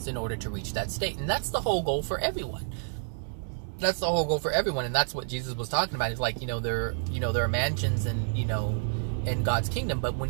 in order to reach that state. And that's the whole goal for everyone. That's the whole goal for everyone, and that's what Jesus was talking about. He's like, there are mansions and, in God's kingdom, but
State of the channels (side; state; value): left; silent; digital silence